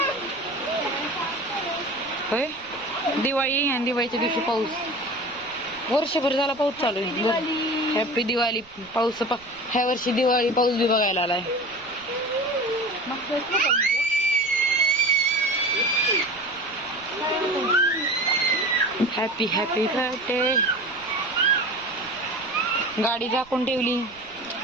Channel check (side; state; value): right; noise; rumble, 26 dB below the sound